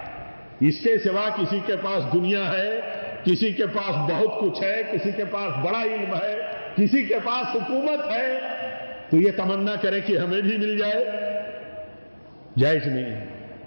اس کے سوا کسی کے پاس دنیا ہے، کسی کے پاس بہت کچھ ہے، کسی کے پاس بڑا علم ہے، کسی کے پاس حکومت ہے، تو یہ تمنا کرے کہ ہمیں بھی مل جائے، جائز نہیں ہے،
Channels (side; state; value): both; inverted; correlation -1.00